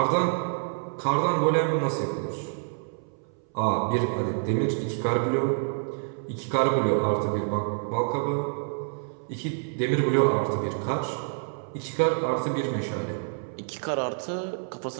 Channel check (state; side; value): silent; left; 60 dB below the other